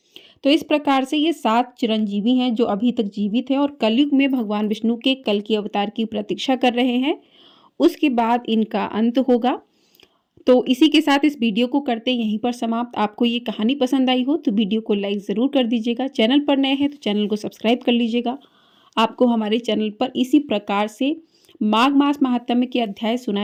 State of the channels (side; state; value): both; identical; correlation 1.00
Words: तो इस प्रकार से ये 7 चिरंजीवी हैं जो अभी तक जीवित हैं और कलयुग में भगवान विष्णु के कल्कि अवतार की प्रतीक्षा कर रहे हैं। उसके बाद इनका अंत होगा। तो इसी के साथ इस वीडियो को करते यहीं पर समाप्त। आपको ये कहानी पसंद आई हो तो वीडियो को लाइक ज़रूर कर दीजिएगा। चैनल पर नए हैं तो चैनल को सब्सक्राइब कर लीजिएगा। आपको हमारे चैनल पर इसी प्रकार से माघ मास महात्म्य के अध्याय